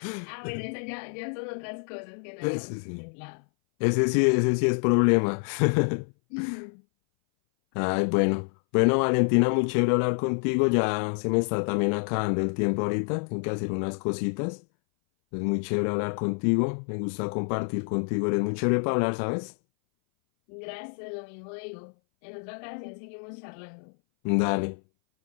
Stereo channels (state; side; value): silent; right; 59 dB below the other